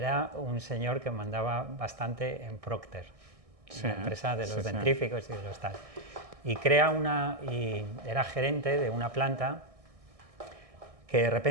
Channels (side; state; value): left; late; 1.6 ms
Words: un señor que mandaba bastante en Procter, la empresa de los dentríficos y de los tal, y era gerente de una planta que de